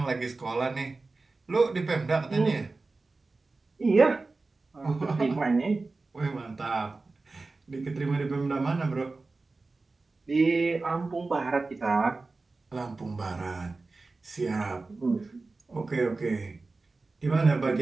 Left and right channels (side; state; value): left; quieter; 3.6 dB